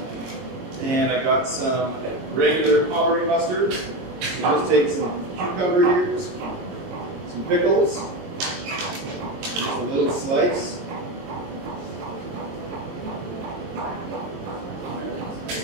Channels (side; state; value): left; late; 22 ms